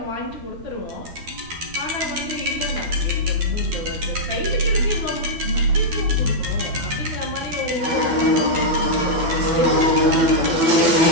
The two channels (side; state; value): left; late; 12 ms